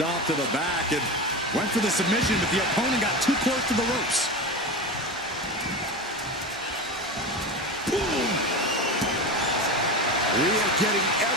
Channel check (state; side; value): normal; both; correlation 0.25